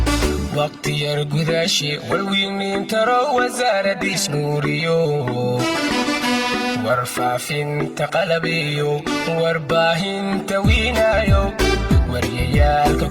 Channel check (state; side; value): identical; both; correlation 1.00